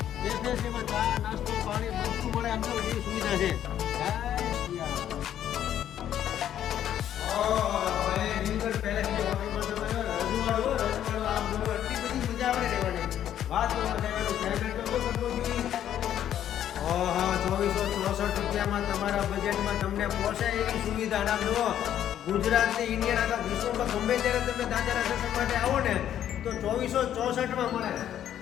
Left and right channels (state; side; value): quieter; right; 10.7 dB